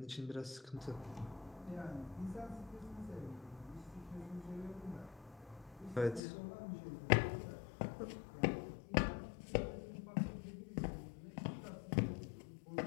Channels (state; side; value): drops out; right; at 6.2 s